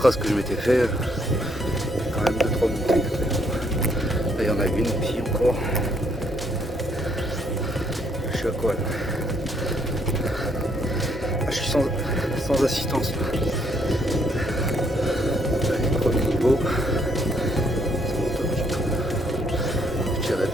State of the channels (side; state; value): both; normal; correlation 0.70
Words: que je m'étais fait, quand même 2-3 montées. Là, il y en a une ici encore. Je suis à quoi là? Ah, je suis sans assistance là. Allez, premier niveau. Ça monte un petit peu. Je dirais